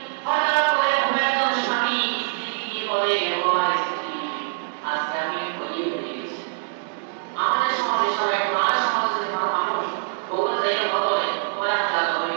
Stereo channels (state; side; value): silent; left; digital silence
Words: হঠাৎ করে কোনো একজন স্বামী স্ত্রীকে বলে ও আমার স্ত্রী আজকে আমি বলিয়ে হয়ে গেছি আমাদের সমাজে সবাই আমাদের সমাজে যদি কোনো মানুষ বহু জায়গায় বদলে তোমার হাজার বলে